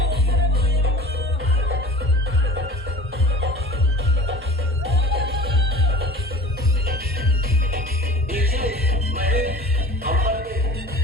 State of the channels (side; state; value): both; normal; correlation 0.42